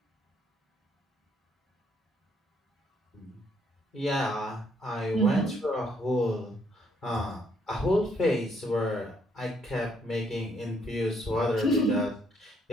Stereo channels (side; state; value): both; normal; correlation 0.70